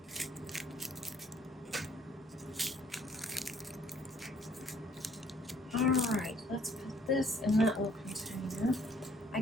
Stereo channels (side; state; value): both; normal; correlation 0.61